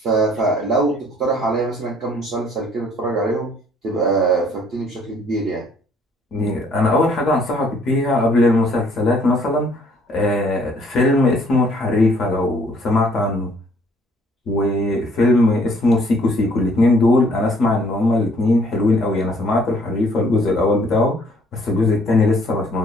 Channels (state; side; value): normal; both; correlation 0.61